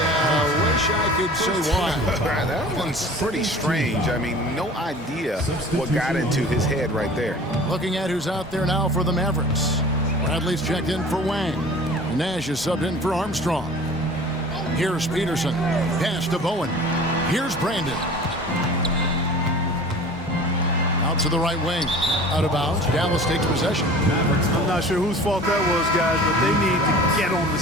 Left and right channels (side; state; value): both; normal; correlation 0.43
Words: Wish I could say why. That one's pretty strange. I mean, no idea what got into his head right there. Looking at who's out there now for the Mavericks. Bradley's checked in for Wang. Nash is subbed in for Armstrong. Here's Peterson. Pass to Bowen. Here's Brandon. Out to the right wing. Out of bounds. Dallas takes possession. I'm not sure whose fault that was, guys, but they need to get on the